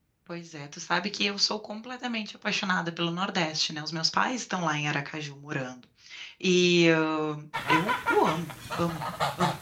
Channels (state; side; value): identical; both; correlation 1.00